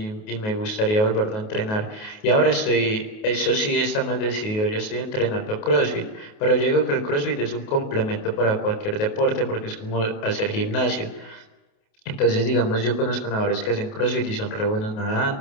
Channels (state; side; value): late; right; 28 ms